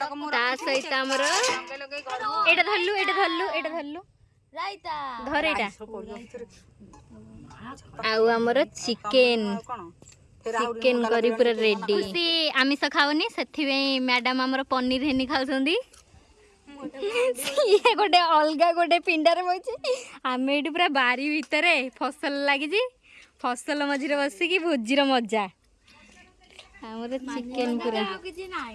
सहित आमर एटा धरलु धर एटा आउ आमर चिकेन चिकेन करी पूरा रेडी सी आमिष खाऊनी से मैडम आमर पनीर हेनी खाऊंगी ये गोटे अलग गोटे पिंडार बचे आम ये पूरा बारी भितर फसल लगी फसल मझे बसिकी भोजीर मजा आमर चिकेन पूरा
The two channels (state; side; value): identical; both; correlation 1.00